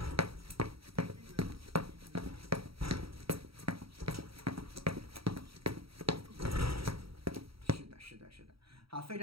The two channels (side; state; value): left; late; 0.75 ms